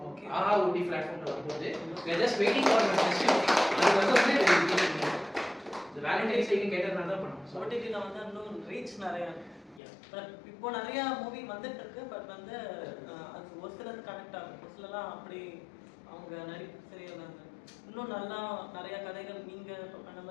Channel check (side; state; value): right; drops out; at 9.8 s